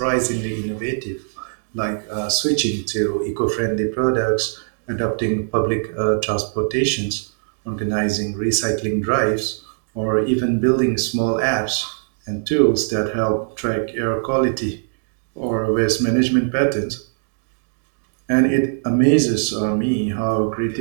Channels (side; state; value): left; silent; digital silence